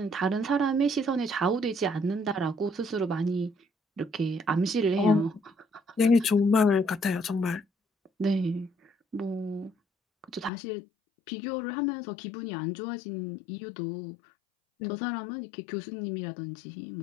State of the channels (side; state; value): right; drops out; at 10.5 s